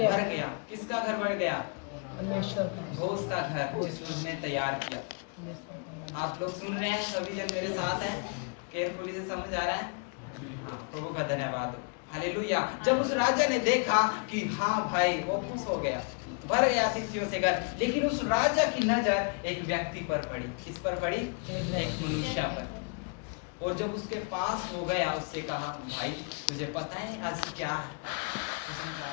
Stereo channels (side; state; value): right; quieter; 37.1 dB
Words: किसका घर भर गया? परमेश्वर का, भोज का घर जिसको उसने तैयार किया। आप लोग सुन रहे हैं? सभी जन मेरे साथ हैं? केयरफुली से समझ आ रहा है? प्रभु का धन्यवाद हो। हालेलुया। जब उस राजा ने देखा कि हाँ भाई, वो खुश हो गया, भर गया अतिथियों से घर, लेकिन उस राजा की नजर एक व्यक्ति पर पड़ी। किस पर पड़ी? एक मनुष्य पर। और जब उसके पास हो गया, उससे कहा, भाई तुझे पता है आज क्या है?